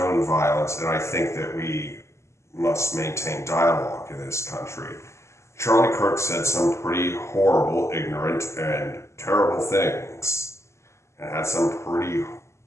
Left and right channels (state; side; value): late; right; 0.13 ms